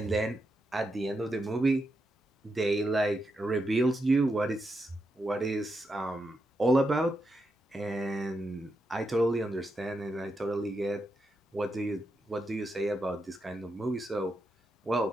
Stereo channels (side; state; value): both; normal; correlation 0.84